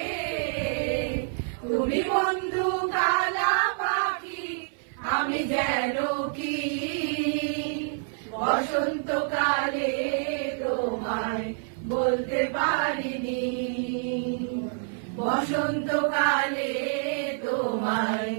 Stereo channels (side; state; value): left; silent; 55 dB below the other